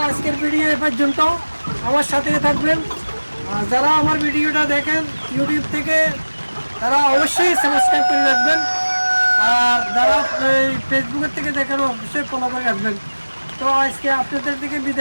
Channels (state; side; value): inverted; both; correlation -1.00